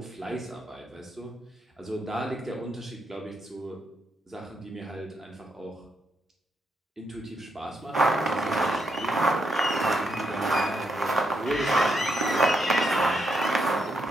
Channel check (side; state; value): both; normal; correlation 0.80